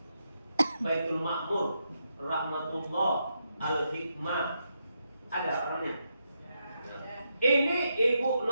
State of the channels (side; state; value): both; inverted; correlation -0.83